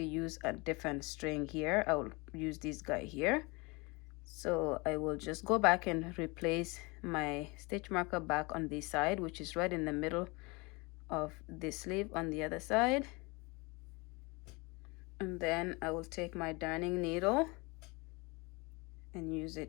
use a different string here. I will use this guy here. So I will just go back and replace my stitch marker back on this side, which is right in the middle of the sleeve on the other side. And then I will take my darning needle and use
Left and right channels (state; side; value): quieter; right; 26.7 dB